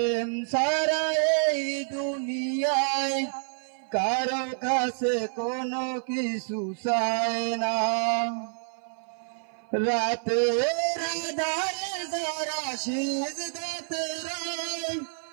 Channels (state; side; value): silent; left; 55 dB below the other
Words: ছাড়া এই দুনিয়ায় কারো কাছে কোনো কিছু চায় না। রাতের আঁধারে যারা সিজদাতে রয়,